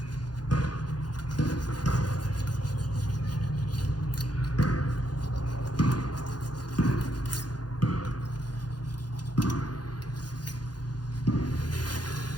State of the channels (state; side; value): late; right; 0.69 ms